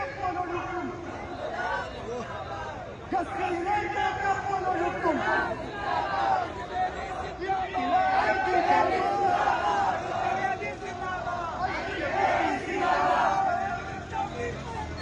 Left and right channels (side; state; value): both; identical; correlation 1.00